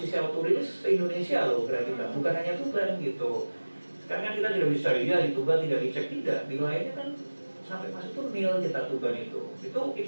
autorilis se-Indonesia loh berarti kita, bukan hanya Tuban gitu. Sekarang kan kita tidak bisa ya di Tuban tidak dicek, tidak, di lainnya kan sampai masuk tuh nil kita Tuban itu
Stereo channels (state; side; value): inverted; both; correlation -1.00